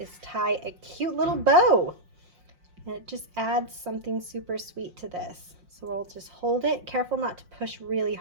tie a cute little bow. And it just adds something super sweet to this. So we'll just hold it. Careful not to push really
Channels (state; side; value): late; left; 5.6 ms